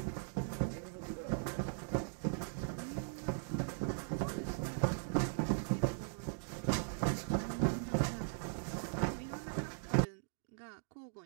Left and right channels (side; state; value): left; silent; digital silence